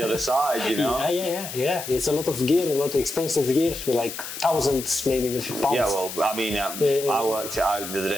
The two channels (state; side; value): noise; left; hiss, 9 dB below the sound